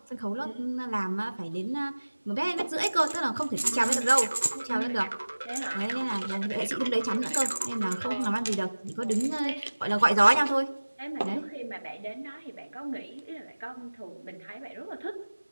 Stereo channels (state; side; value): inverted; both; correlation -1.00